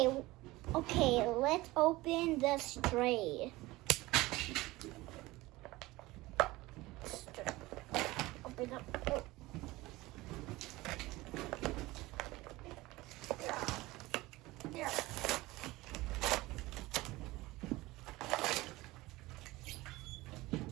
let's open the stray. Open up. Oh.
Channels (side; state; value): left; quieter; 19.8 dB